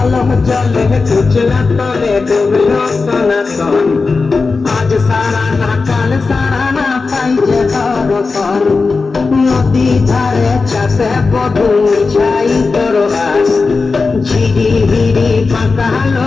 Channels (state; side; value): quieter; right; 4.2 dB